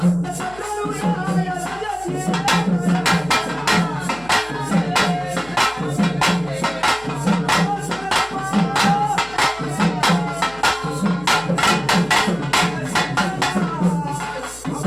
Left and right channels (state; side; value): noise; left; hum, 21 dB below the sound